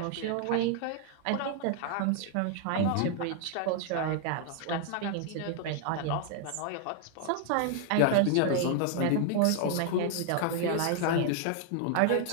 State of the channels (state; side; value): different; both; correlation 0.00